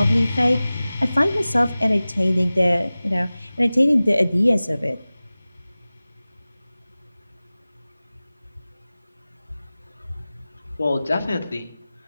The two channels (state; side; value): inverted; both; correlation -0.98